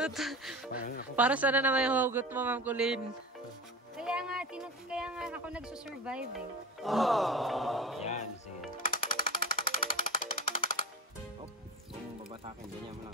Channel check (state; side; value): normal; both; correlation 0.31